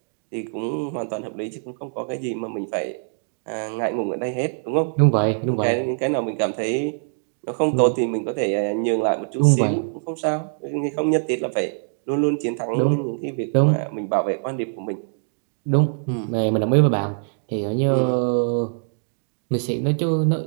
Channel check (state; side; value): silent; left; digital silence